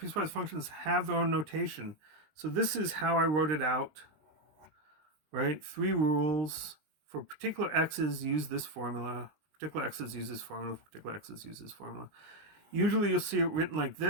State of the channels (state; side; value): late; left; 20 ms